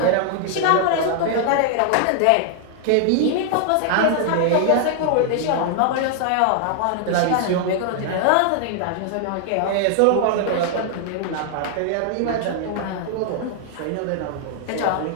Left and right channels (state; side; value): different; both; correlation 0.00